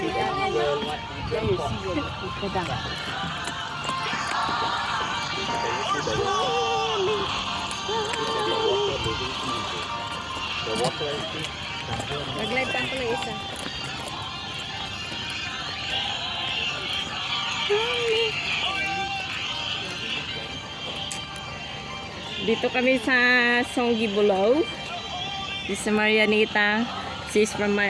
pa pala isa. Dito kami sa Songgi Bulao. This is Marianita. She's from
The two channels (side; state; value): both; identical; correlation 1.00